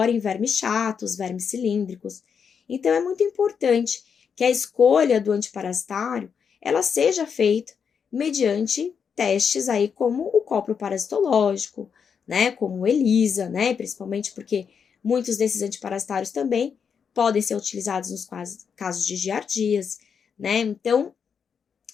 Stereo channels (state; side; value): quieter; right; 6.7 dB